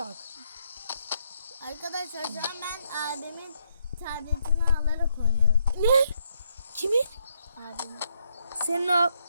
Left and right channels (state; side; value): inverted; both; correlation -0.75